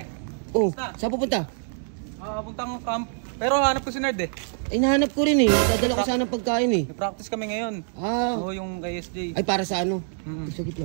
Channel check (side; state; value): left; silent; 61 dB below the other